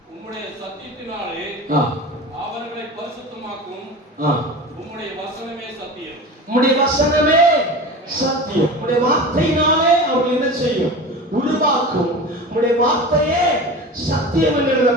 உம்முடைய சத்தியத்தினாலே அவர்களை பரிசுத்தமாக்கும். உம்முடைய வசனமே சத்தியம். உம்முடைய வசனமே சத்தியம். உம்முடைய வார்த்தையினாலே அவர்கள் என்ன செய்யும்? உருவாக்கும். உம்முடைய வார்த்தையே சத்தியம் என்று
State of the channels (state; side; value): normal; both; correlation 0.32